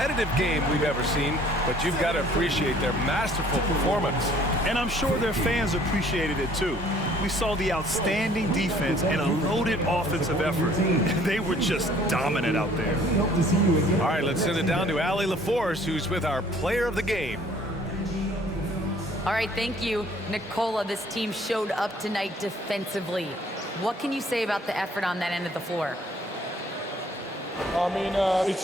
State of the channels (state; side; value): normal; both; correlation 0.57